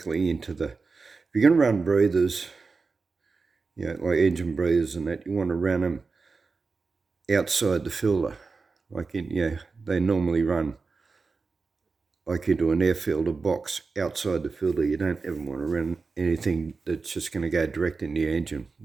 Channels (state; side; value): quieter; left; 4.4 dB